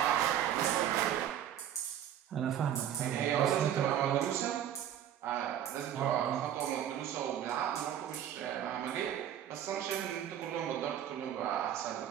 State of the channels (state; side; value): quieter; left; 10.4 dB